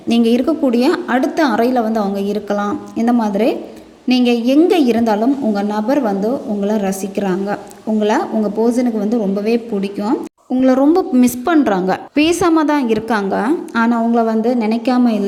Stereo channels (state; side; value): identical; both; correlation 1.00